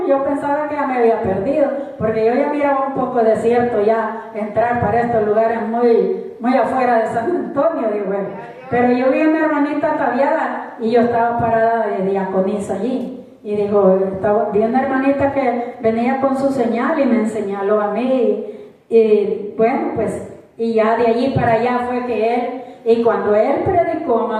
yo pensaba que ya me había perdido, porque yo ya miraba un poco desierto ya entrar para estos lugares muy afuera de San Antonio, digo él. Pero yo vi una hermanita ataviada y yo estaba parada de diaconisa allí. Y dijo, vi una hermanita que venía con su señal y me señaló a mí. Y bueno, pues, y ya de allí para allá fue que él, y cuando él predicó,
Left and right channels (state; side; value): identical; both; correlation 1.00